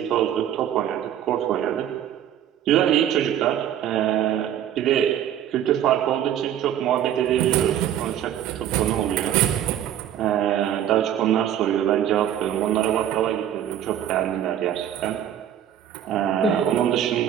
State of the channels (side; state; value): left; quieter; 10.6 dB